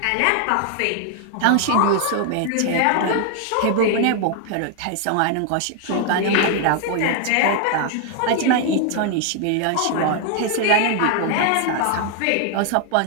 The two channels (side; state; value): both; different; correlation 0.00